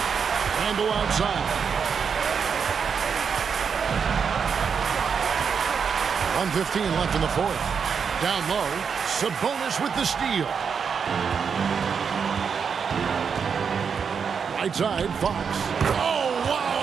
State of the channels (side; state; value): left; quieter; 6.4 dB